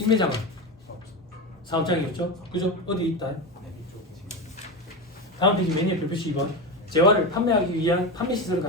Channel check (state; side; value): normal; both; correlation 0.19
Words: 사업장이었죠. 그죠? 어디 있다? 다음 페이지 메뉴 별표시 2번. 재화를 판매하기 위한 판매 시설을